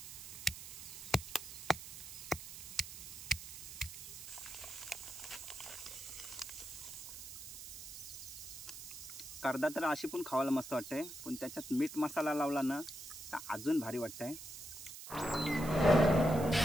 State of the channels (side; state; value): right; noise; hiss, 11 dB below the sound